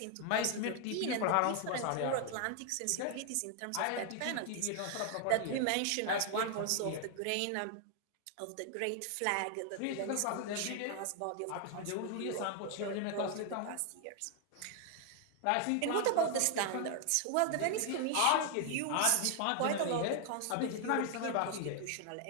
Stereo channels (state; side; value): different; both; correlation 0.00